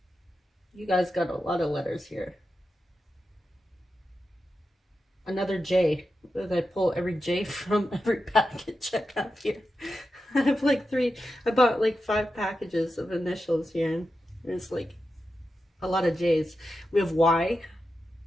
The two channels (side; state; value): both; normal; correlation 0.90